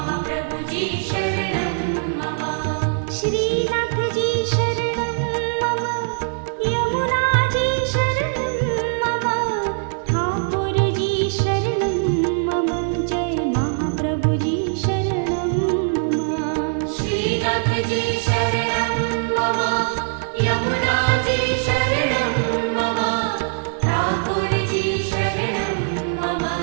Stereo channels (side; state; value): left; silent; digital silence